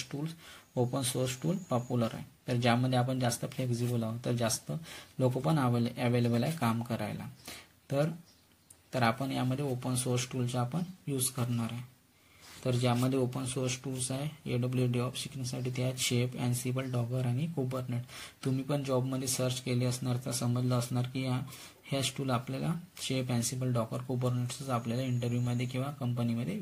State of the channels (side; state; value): both; identical; correlation 1.00